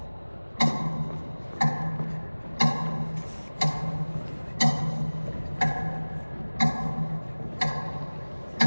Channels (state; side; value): inverted; both; correlation -1.00